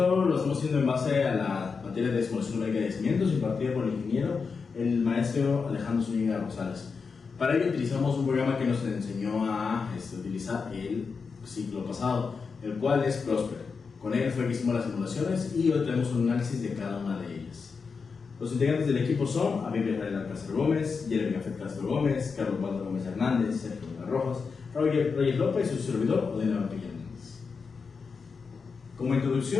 lo estamos haciendo en base a la materia de simulación numérica de yacimientos impartida por el ingeniero, el maestro Alejandro Zúñiga Rosales. Para ello utilizamos un programa que nos enseñó a utilizar el ciclo pasado, el cual es Prosper. Con él fue que hicimos las simulaciones y hoy tenemos un análisis de cada una de ellas. Los integrantes del equipo son Abigail Israel Alcázar Gómez, Jeremy Gafet Castro Gómez, Carlos Waldo Gómez Hernández, Sergio Vega Rojas, Roger López y su servidor Odena Vampilla Hernández. Como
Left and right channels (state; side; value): quieter; right; 5.2 dB